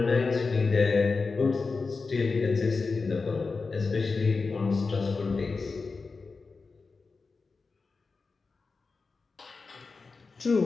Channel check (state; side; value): quieter; right; 4.3 dB